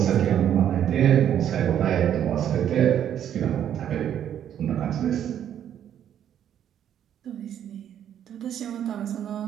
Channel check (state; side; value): quieter; left; 10.0 dB